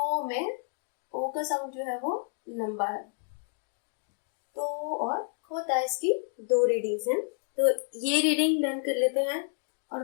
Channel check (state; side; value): silent; right; digital silence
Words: में ओ का साउंड जो है वो लंबा है। तो और खोता, इसकी 2 रीडिंग्स हैं। तो ये रीडिंग लर्न कर लेते हैं और